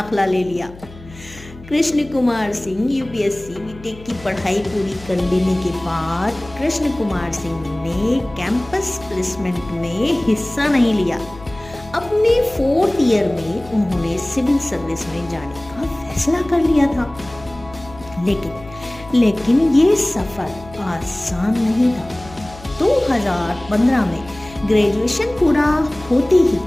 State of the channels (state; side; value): noise; left; hum, 18 dB below the sound